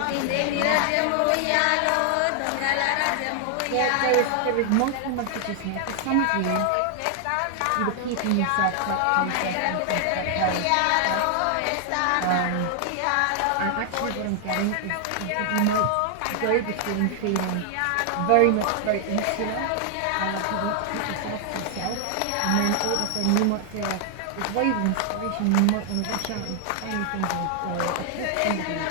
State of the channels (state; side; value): different; both; correlation 0.00